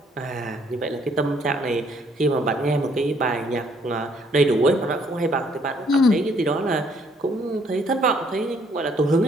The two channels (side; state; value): both; normal; correlation 0.66